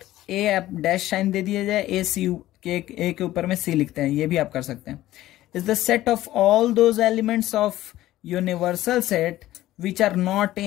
A आप डैश साइन दे दिया जाए, ए सी के, ए के ऊपर में सी लिखते हैं, ये भी आप कर सकते हैं, is the set of all those elements of universal set which are not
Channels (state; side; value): quieter; right; 15.0 dB